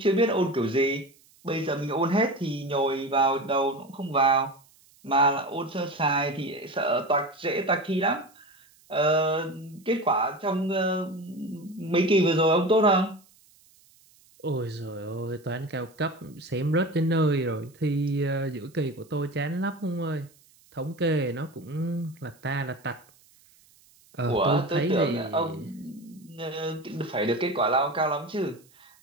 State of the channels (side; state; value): right; noise; hiss, 29 dB below the sound